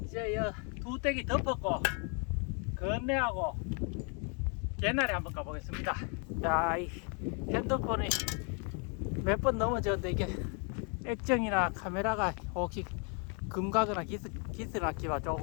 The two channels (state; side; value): quieter; right; 37.7 dB